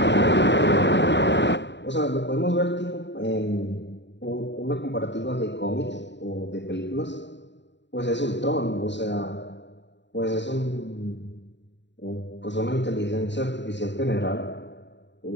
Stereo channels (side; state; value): right; late; 0.52 ms